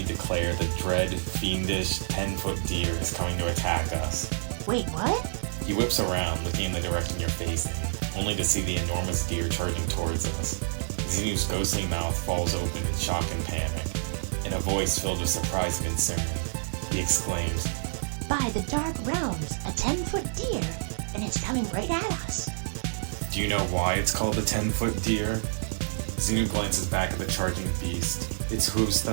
declare the dread, fiendish 10-foot deer is coming to attack us. Wait, what? He whips around, looking in the direction you're facing, only to see the enormous deer charging towards us. Xenu's ghostly mouth falls open in shock and panic. In a voice filled with surprise and concern, he exclaims, By the dark realms, a 10-foot deer, and it's coming right at us. Do you know why it's called the 10-foot deer? Xenu glances back at the charging beast, its hooves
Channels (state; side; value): silent; left; digital silence